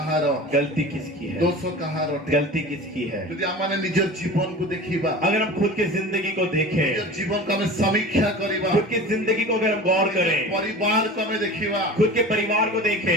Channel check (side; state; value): both; normal; correlation 0.36